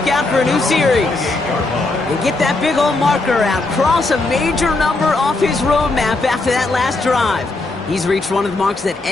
out for a new series. And get that big old marker out. Cross a major number off his roadmap after that last drive. He's reached one of the marks that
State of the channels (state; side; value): quieter; right; 3.2 dB